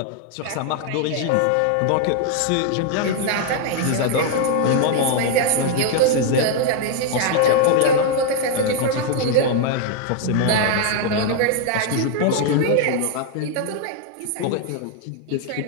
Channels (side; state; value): both; different; correlation 0.00